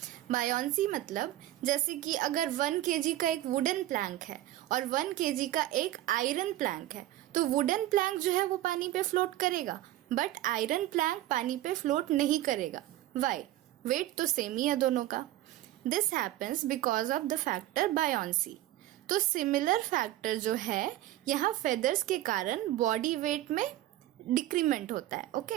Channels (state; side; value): quieter; left; 14.8 dB